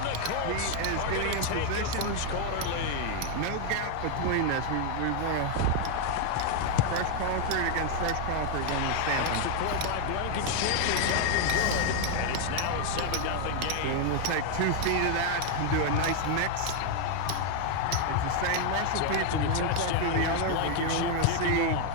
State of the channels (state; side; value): different; both; correlation 0.00